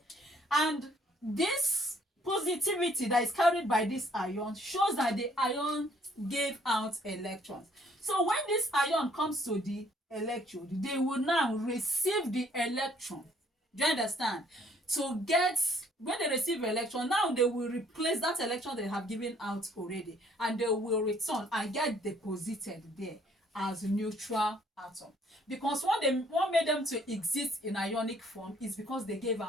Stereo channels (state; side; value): normal; both; correlation 0.63